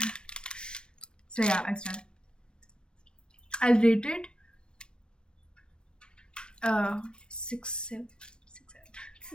So yeah, it's done. I'll rate it 6, 7, 6,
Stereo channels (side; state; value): right; late; 0.053 ms